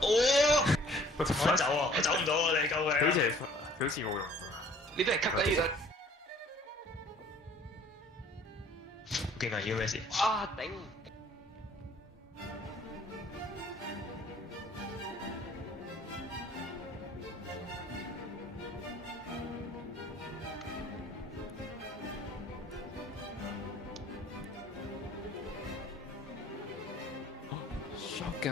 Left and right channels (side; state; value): both; normal; correlation 0.55